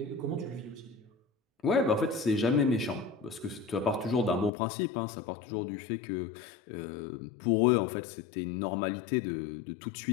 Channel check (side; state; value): right; drops out; at 4.5 s